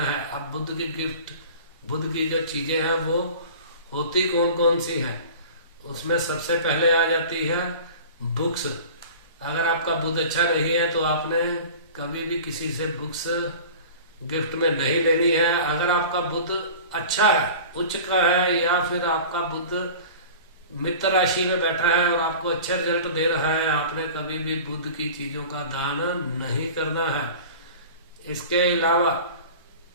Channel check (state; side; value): inverted; both; correlation -0.39